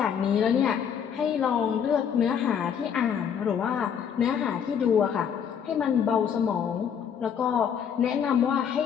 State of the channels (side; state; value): right; quieter; 7.9 dB